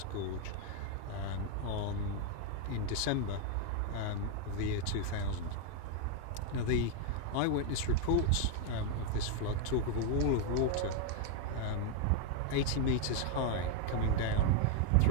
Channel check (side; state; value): both; different; correlation 0.01